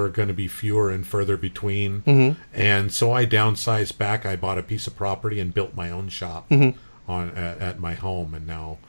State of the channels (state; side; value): inverted; both; correlation -1.00